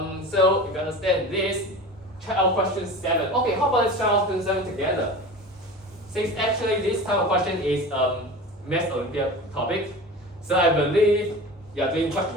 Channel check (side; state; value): both; normal; correlation 0.34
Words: if you understand this, check out question 7. Okay, how about let's try out question 7 together? Since actually this type of question is Math Olympiad topic, so I believe you are doing quite